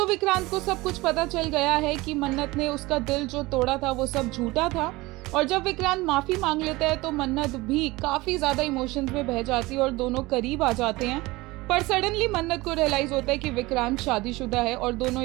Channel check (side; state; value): left; quieter; 21.0 dB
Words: विक्रांत को सब कुछ पता चल गया है कि मन्नत ने उसका दिल जो तोड़ा था वो सब झूठा था। और जब विक्रांत माफी मांग लेता है तो मन्नत भी काफी ज्यादा इमोशंस में बह जाती है और दोनों करीब आ जाते हैं। पर सडनली मन्नत को रियलाइज होता है कि विक्रांत शादीशुदा है और दोनों